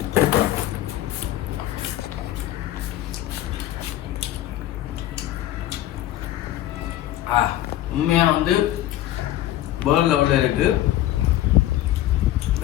உண்மையா வந்து வேர்ல்ட் லெவலில் இருக்கு.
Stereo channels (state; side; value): quieter; right; 13.7 dB